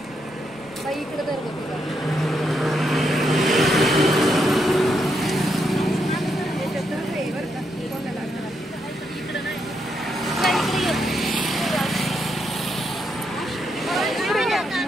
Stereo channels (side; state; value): right; noise; rumble, 26 dB below the sound